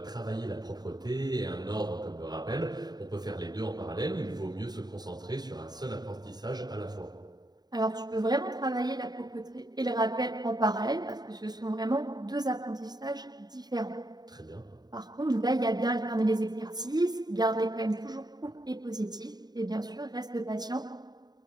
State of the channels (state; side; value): late; left; 0.20 ms